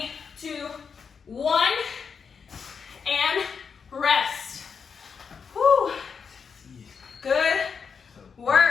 2, 1, and rest. Whew. Good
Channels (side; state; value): right; quieter; 6.0 dB